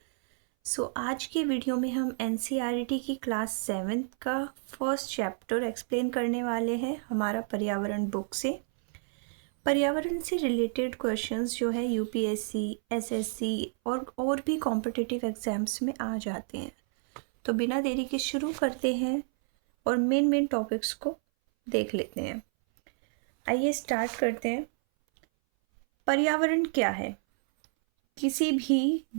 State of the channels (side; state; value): left; silent; 58 dB below the other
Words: आज की video में हम एनसीईआरटी की क्लास 7th का फर्स्ट चैप्टर एक्सप्लेन करने वाले हैं हमारा पर्यावरण बुक से। पर्यावरण से रिलेटेड क्वेश्चंस जो है यूपीएससी, एसएससी और भी कॉम्पिटिटिव एग्जाम्स में आ जाते हैं। तो बिना देरी के शुरू करते हैं और मेन टॉपिक्स को देख लेते हैं। आइए स्टार्ट करते हैं। पर्यावरण क्या है? किसी भी